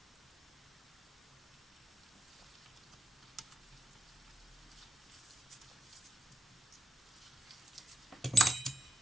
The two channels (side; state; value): both; normal; correlation 0.86